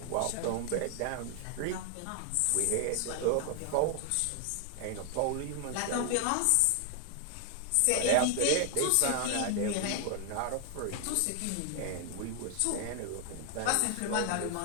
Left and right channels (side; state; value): both; different; correlation 0.00